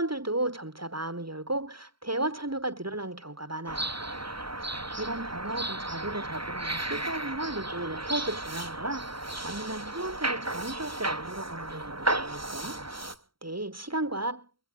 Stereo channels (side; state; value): left; late; 0.74 ms